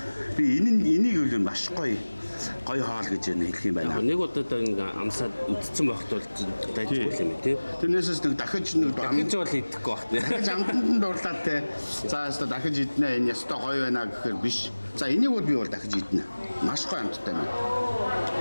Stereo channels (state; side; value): inverted; both; correlation -1.00